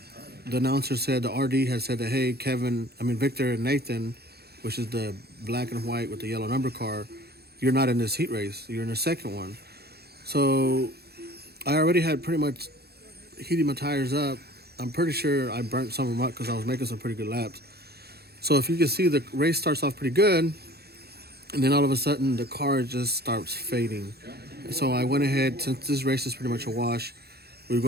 announcer said, the RD had said that, hey, Victor and Nathan, which is the black and white with the yellow number car, you're not in this heat race. You're in the second one. So I already had pretty much heated my tires up. I'm pretty sure I burnt some of them up because I was making some pretty good laps. So if you can see, the race starts off pretty good, and then all of a sudden the car just starts fading. And so I went ahead, since this race is pretty much a wash, we were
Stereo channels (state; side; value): late; left; 0.47 ms